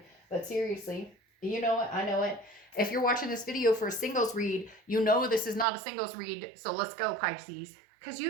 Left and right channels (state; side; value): drops out; left; at 5.7 s